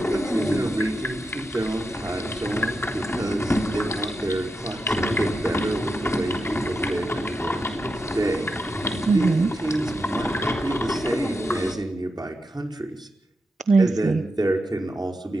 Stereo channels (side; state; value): both; normal; correlation 0.87